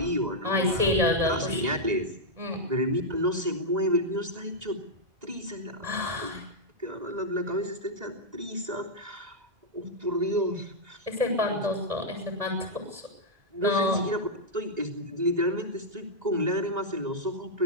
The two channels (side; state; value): left; late; 1.9 ms